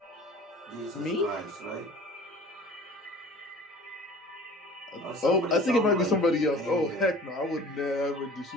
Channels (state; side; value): normal; both; correlation 0.45